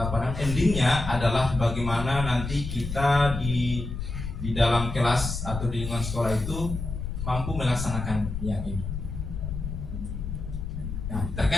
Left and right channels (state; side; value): noise; left; rumble, 6 dB below the sound